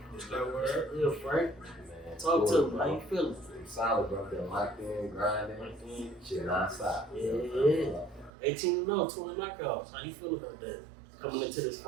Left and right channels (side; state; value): left; drops out; at 8.3 s